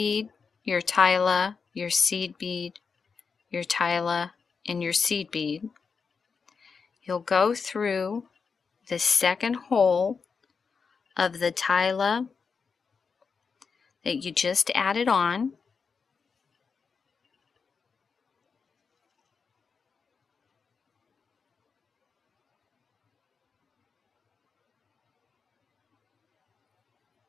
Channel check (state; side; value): quieter; right; 5.4 dB